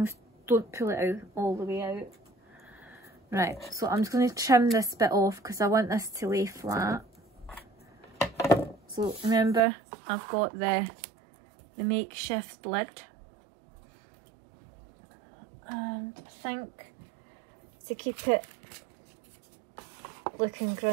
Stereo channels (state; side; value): drops out; left; at 9.6 s